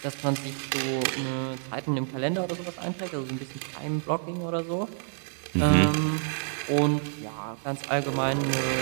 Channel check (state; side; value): silent; left; 59 dB below the other